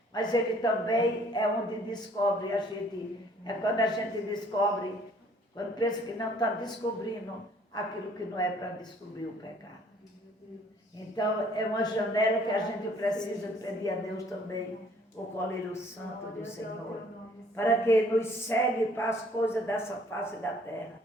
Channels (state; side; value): normal; both; correlation 0.59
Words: Mas ele também é onde descobre a gente. É quando a gente descobre, quando pensa que não está descobrindo aquilo que não é para descobrir o pecado. Então, é uma janela que a gente precisa pedir a Deus também, o colírio santo do Senhor, para que nos segue para as coisas dessa face da terra